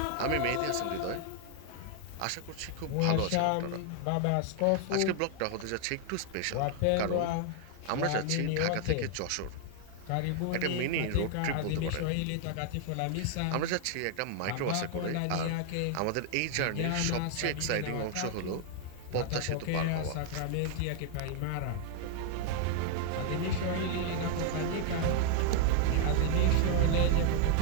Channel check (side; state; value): both; different; correlation 0.00